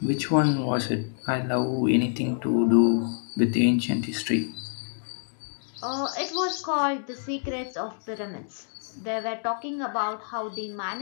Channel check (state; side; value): silent; right; digital silence